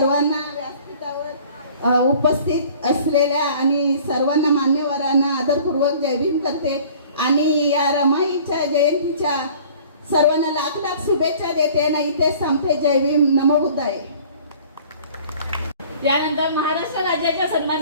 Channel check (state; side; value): inverted; both; correlation -0.50